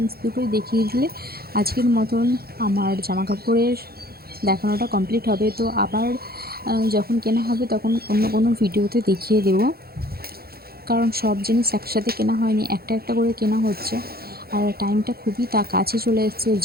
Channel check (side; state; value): left; late; 0.45 ms